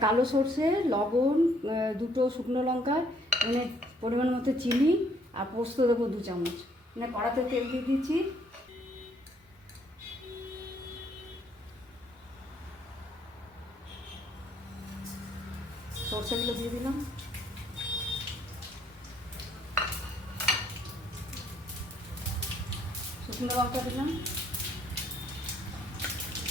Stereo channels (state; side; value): normal; both; correlation 0.66